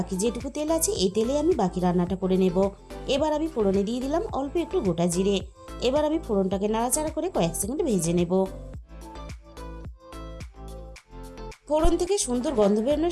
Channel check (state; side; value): identical; both; correlation 1.00